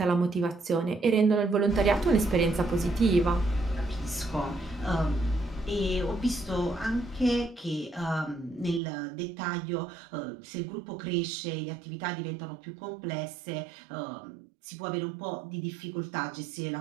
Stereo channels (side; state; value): left; drops out; at 8.8 s